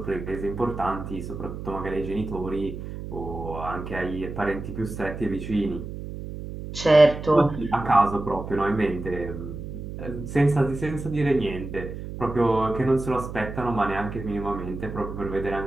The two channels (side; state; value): right; noise; hum, 8 dB below the sound